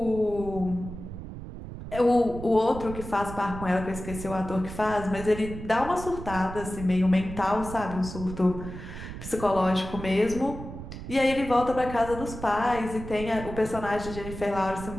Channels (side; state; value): right; noise; rumble, 10 dB below the sound